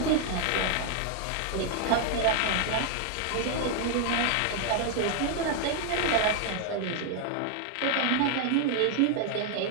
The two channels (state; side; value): different; both; correlation 0.00